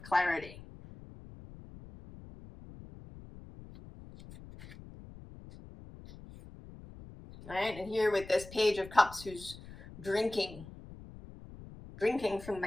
clarity. Right? And here with this Page of Cups, who's drinking from the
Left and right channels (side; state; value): left; noise; rumble, 17 dB below the sound